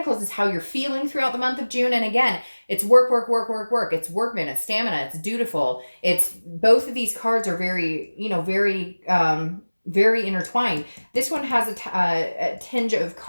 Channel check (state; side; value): inverted; both; correlation -1.00